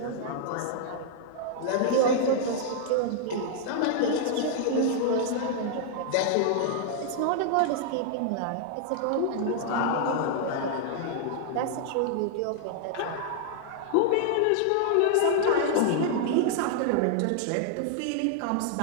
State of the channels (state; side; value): different; both; correlation -0.01